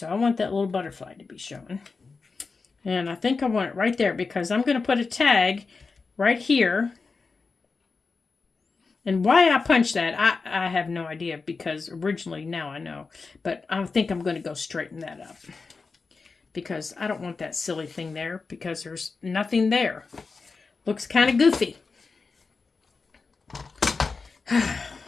I want that little butterfly to be shown. And I think I want it right there because I'm going to put a tag right here. And why I punched that, I have no idea because originally, now I know. But I think I'm going to go straighten that up. Because I don't want that silly thing there because there's nothing there. Looks kind of goofy.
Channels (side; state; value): right; quieter; 4.4 dB